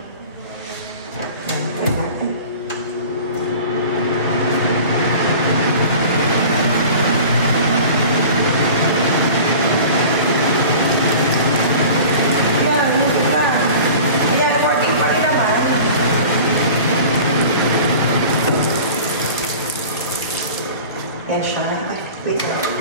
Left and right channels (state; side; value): inverted; both; correlation -0.40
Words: Ayan, try natin. Ayan, hindi na. Ayan, working pa rin naman. Ayan siya. Wait.